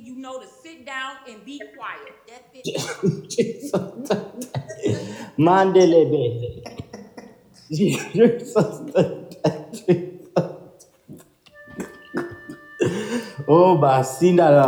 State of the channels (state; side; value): identical; both; correlation 1.00